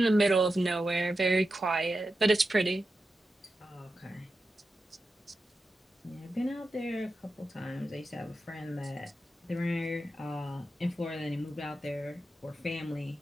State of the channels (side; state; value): both; normal; correlation 0.90